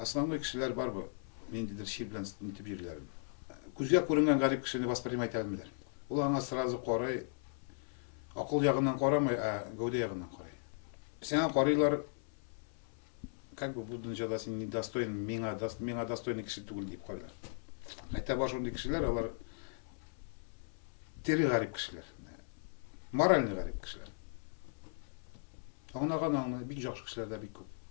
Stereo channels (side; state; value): right; silent; 53 dB below the other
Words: кішілер бар бұл. Мен дедір шер білен нетіп жерлерім. Көзге көрінген ғарип кішіні воспринимать әлмелер. Ол аңа сразу қорай, ақыл жағынан қорамай, гәуде жағынан қорай. Сен қорайлар, как бы бұл дүниеде сен недостоин, меңа достойный кіші түгіл деп қойлар. Айта бар шондай кішілер, олар тері ғарип кішілер, моральный ғарип кішілер. Аңнаған бик жақсы кішілер де бик көп.